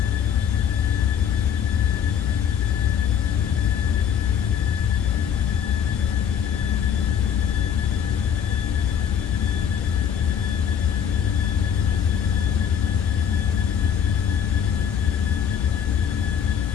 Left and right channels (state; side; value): quieter; right; 8.2 dB